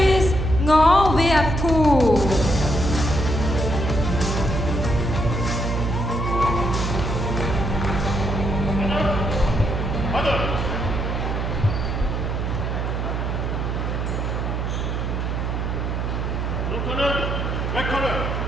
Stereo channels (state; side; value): noise; right; hum, 1 dB below the sound